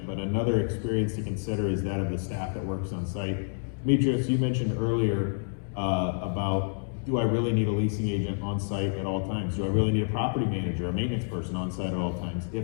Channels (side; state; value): right; silent; digital silence